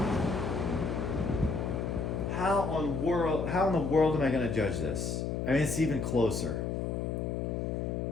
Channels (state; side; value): noise; left; hum, 1 dB below the sound